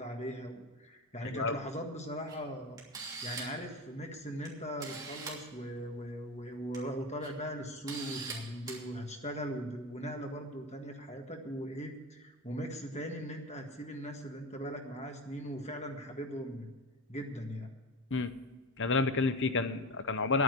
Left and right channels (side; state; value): both; normal; correlation 0.23